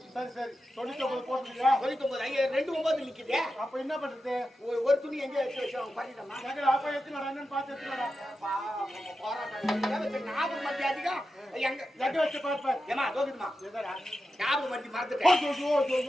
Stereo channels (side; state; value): both; normal; correlation 0.90